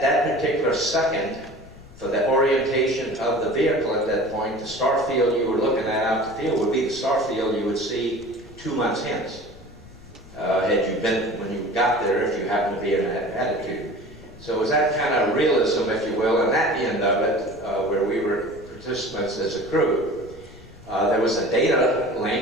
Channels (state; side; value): noise; left; rumble, 20 dB below the sound